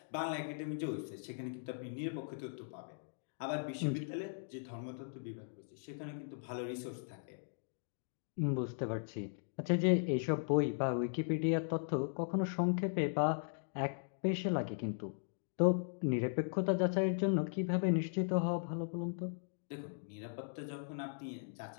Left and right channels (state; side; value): silent; right; digital silence